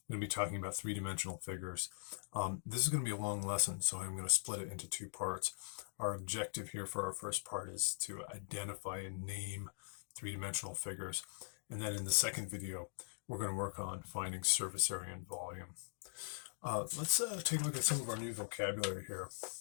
going to be talking about three-dimensional figures. This is going to be a long lesson, so I'm going to split it into two parts. Our objective here for our first part is to identify and name three-dimensional figures. And then in the second video, we're going to work on finding surface area and volume. Let's take a look at some of our new vocabulary here.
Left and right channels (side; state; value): right; silent; digital silence